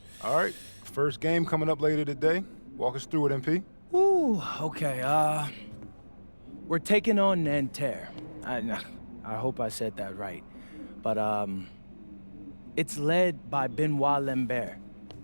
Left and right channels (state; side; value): inverted; both; correlation -1.00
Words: All right, first game coming up later today. Walk us through it, MP. Ooh, okay, we're taking on Nanterre. I hope I said that right. But, it's led by Benoit Lambert,